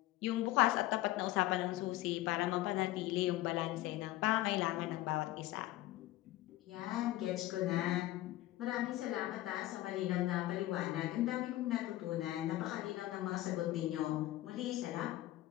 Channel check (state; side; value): quieter; right; 16.1 dB